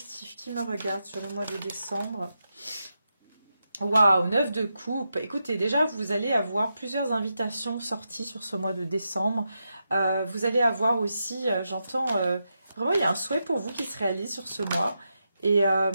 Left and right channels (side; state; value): both; inverted; correlation -0.86